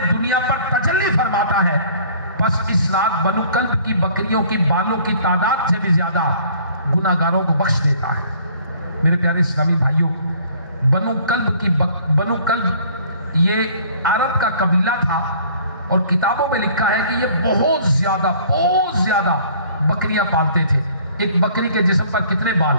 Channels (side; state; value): both; inverted; correlation -0.54